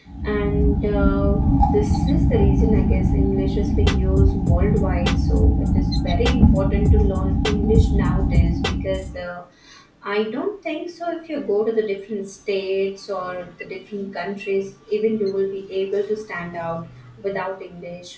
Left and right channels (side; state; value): both; identical; correlation 1.00